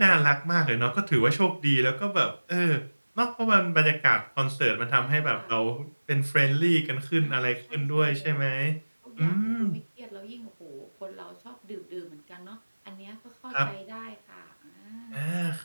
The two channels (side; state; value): both; inverted; correlation -1.00